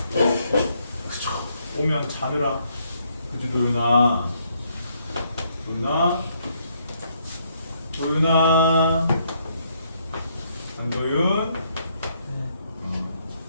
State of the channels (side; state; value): both; inverted; correlation -0.72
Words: 그쵸. 오면 자느라. 그치 도윤아. 도윤아. 안도윤.